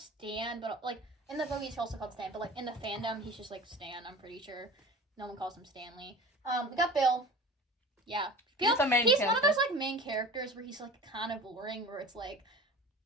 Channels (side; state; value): both; normal; correlation 0.38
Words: but like in the movie he's also called Stan. But like in the fandom, he's just like Stan. I'm pretty sure no one calls him Stanley. We got Bill. Yeah, Bill. He's the main He's character. one of those like main characters where he's like kind of boring. Where it's like